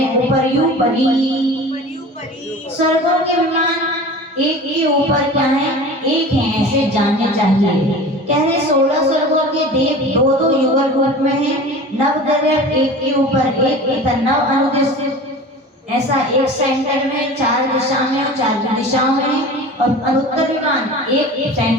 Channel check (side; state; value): both; normal; correlation 0.37